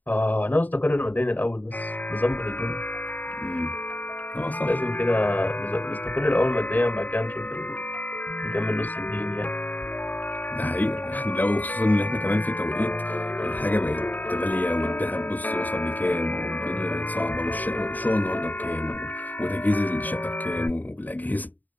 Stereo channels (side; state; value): right; late; 0.084 ms